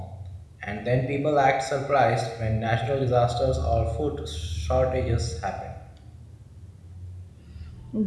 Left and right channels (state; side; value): identical; both; correlation 1.00